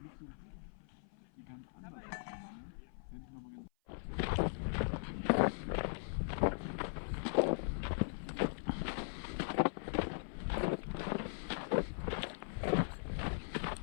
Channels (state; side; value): silent; right; 51 dB below the other